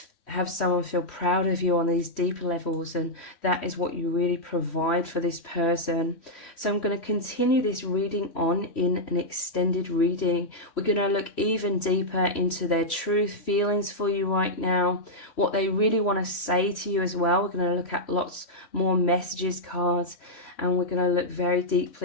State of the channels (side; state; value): right; late; 3.1 ms